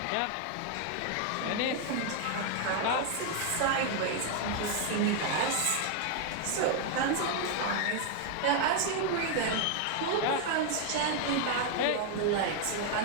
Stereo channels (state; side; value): different; both; correlation 0.00